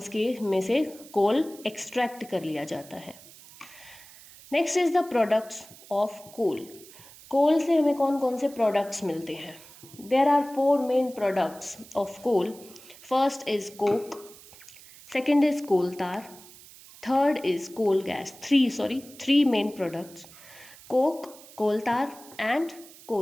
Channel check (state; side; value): noise; right; hiss, 20 dB below the sound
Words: के में से कोल एक्सट्रैक्ट कर लिया जाता है. Next is the products of coal. Coal से हमें कौन कौन से प्रोडक्ट्स मिलते हैं. There are 4 main products of coal. First is coke, second is coal tar, third is coal gas. 3 main products, coke, coal tar and